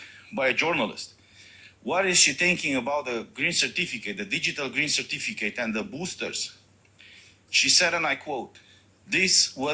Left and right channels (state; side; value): identical; both; correlation 1.00